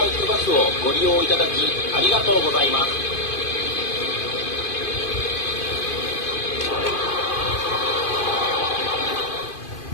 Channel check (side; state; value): right; late; 2.5 ms